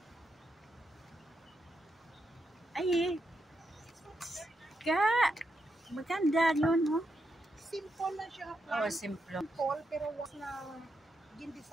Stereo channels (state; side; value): normal; both; correlation 0.83